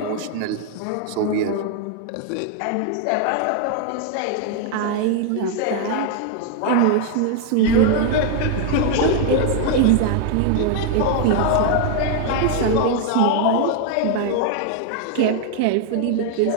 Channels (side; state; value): both; different; correlation 0.00